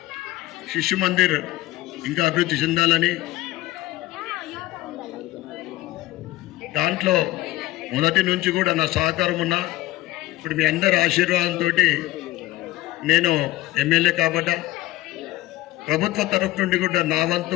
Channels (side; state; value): right; quieter; 17.3 dB